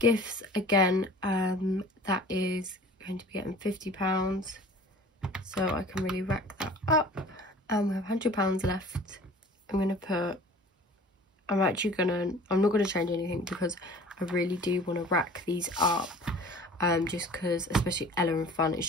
again, that is going to be getting £50. So I can really rack that up. And we have £100 left. I'm not going to change anything because I really do want to rack these up, just because, especially Ella and Fun, it's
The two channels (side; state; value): both; normal; correlation 0.45